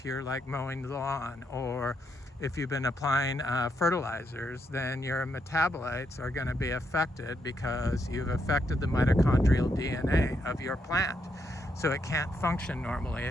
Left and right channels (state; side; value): normal; both; correlation 0.79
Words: you're like mowing the lawn, or if you've been applying fertilizers, then your metabolites are going to be affected because you've affected the mitochondrial DNA of your plant. So it can't function normally.